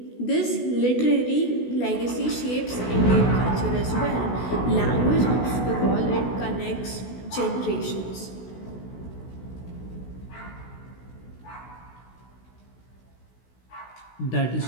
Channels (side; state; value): right; late; 16 ms